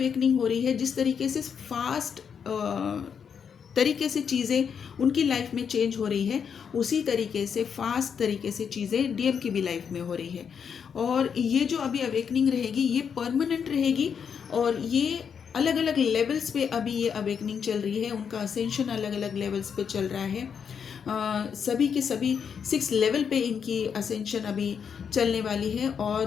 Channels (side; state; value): right; quieter; 7.0 dB